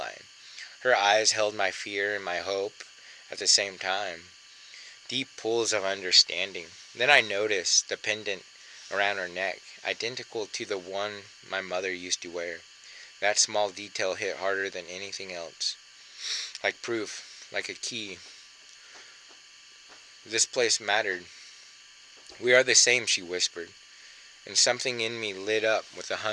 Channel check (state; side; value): identical; both; correlation 1.00